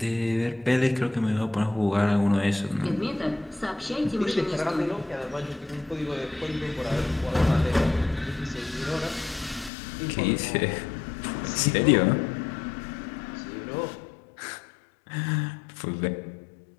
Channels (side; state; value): right; drops out; at 9.7 s